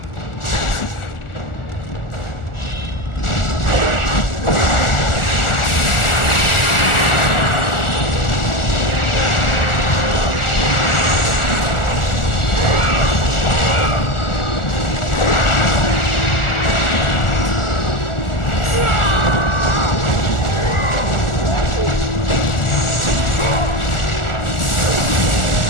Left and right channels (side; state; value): right; late; 1.4 ms